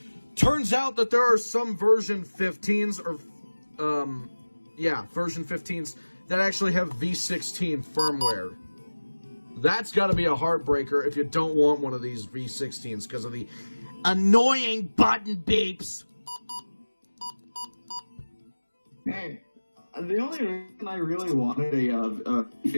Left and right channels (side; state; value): both; inverted; correlation -1.00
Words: Turns out that there are some version 15s, or, version 15s, that actually have V16 firmware. That's got to be a heartbreaker if you don't want one of these V16s because of the annoying button beeps. Hey, the only reason I really wanted a